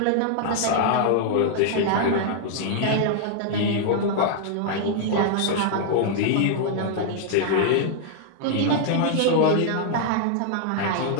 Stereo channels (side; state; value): both; different; correlation -0.01